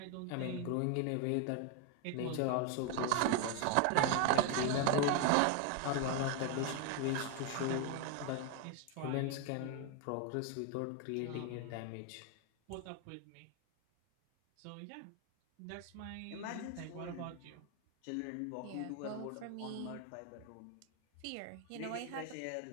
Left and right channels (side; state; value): both; different; correlation 0.01